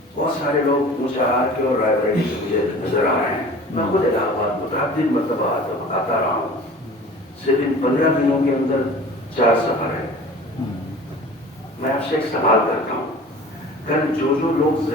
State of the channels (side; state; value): both; normal; correlation 0.42